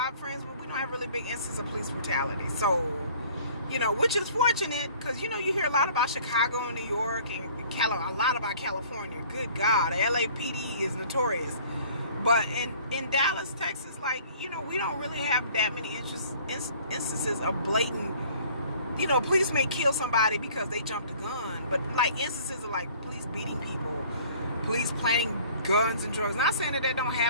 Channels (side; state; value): both; inverted; correlation -0.52